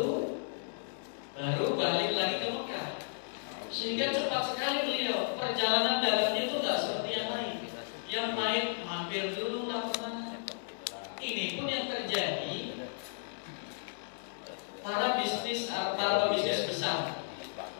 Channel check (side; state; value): right; silent; digital silence